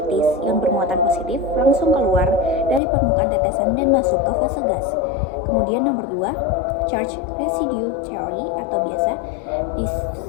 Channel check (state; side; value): drops out; right; at 2.8 s